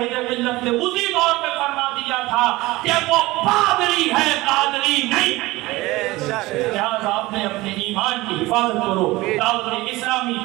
ملت نے اسی دور پہ فرما دیا تھا کہ وہ پادری ہے, قادری نہیں. لہذا آپ نے اپنے ایمان کی حفاظت کرو. دعوت اسلامی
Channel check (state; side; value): quieter; left; 20.0 dB